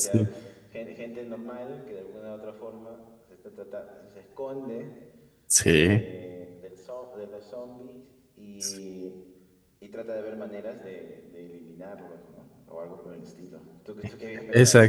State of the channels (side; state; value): both; identical; correlation 1.00